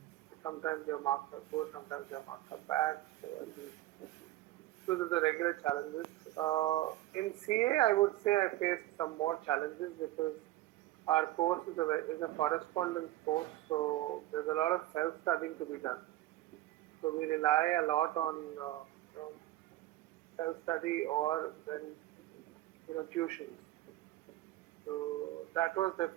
sometimes your marks are good, sometimes your marks are bad. So I think those are the regular challenges. In CA, I would say I faced some more challenges because our course is a correspondence course, so there's a lot of self-studying to be done. So we rely a lot on self-study or then tuitions. So that was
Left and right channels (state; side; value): quieter; left; 16.0 dB